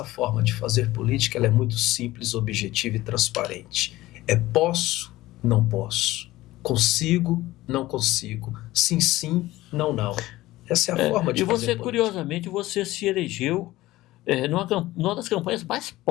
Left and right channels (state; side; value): quieter; right; 17.3 dB